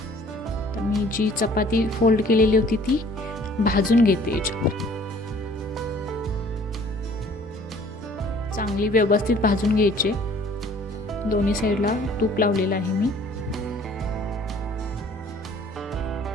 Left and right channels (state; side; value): normal; both; correlation 0.54